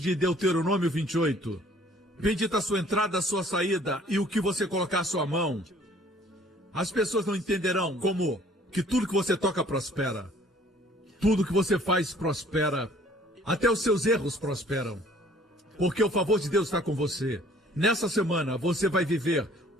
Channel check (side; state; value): both; normal; correlation 0.56